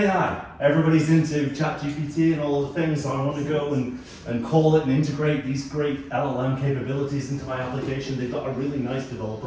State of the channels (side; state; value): both; identical; correlation 1.00